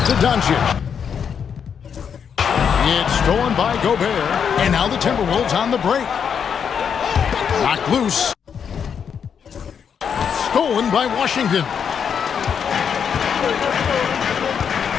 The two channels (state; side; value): quieter; right; 7.3 dB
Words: to Doncic. It's stolen by Gobert. And now the Timberwolves on the break. Knocked loose. Stolen by Washington.